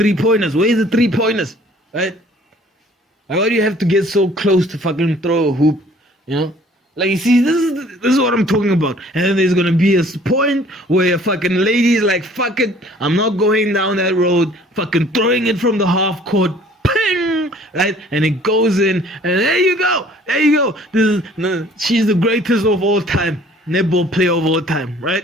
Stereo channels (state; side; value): normal; both; correlation 0.54